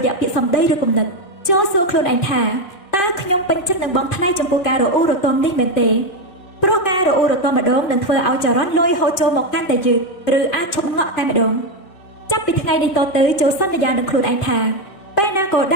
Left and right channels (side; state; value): right; late; 2.3 ms